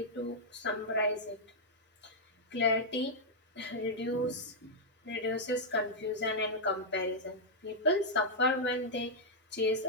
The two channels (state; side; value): normal; both; correlation -0.05